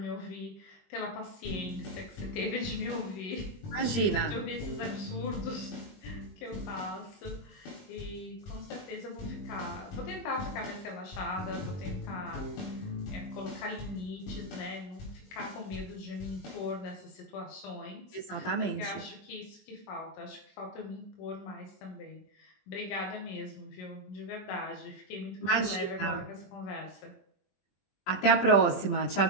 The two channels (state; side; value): late; right; 20 ms